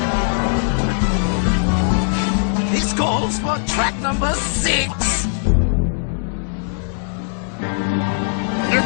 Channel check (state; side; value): silent; right; digital silence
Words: This calls for track number 6. You